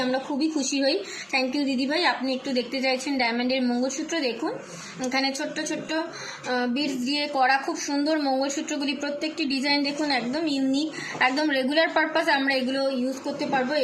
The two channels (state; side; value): identical; both; correlation 1.00